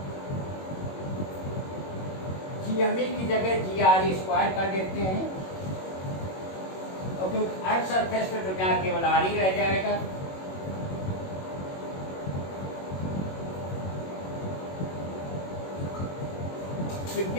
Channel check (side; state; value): right; late; 21 ms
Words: GME की जगह GRE² कर देते हैं, और क्योंकि अर्थ सरफेस पे तो क्या केवल R ही रह जाएगा। तो